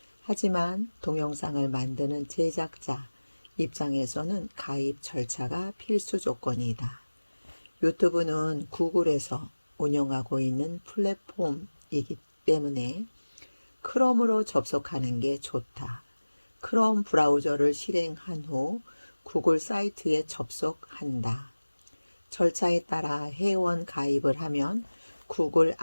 하지만 동영상을 만드는 제작자 입장에서는 가입 절차가 필수 조건이다. 유튜브는 구글에서 운영하고 있는 플랫폼이기 때문에 크롬으로 접속하는 게 좋다. 크롬 브라우저를 실행한 후 구글 사이트에 접속한다. 절차에 따라 회원 가입을 하면 구글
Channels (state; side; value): inverted; both; correlation -1.00